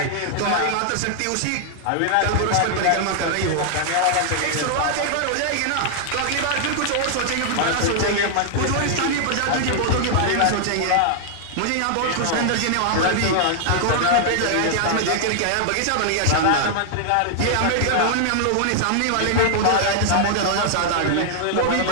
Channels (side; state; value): both; different; correlation -0.01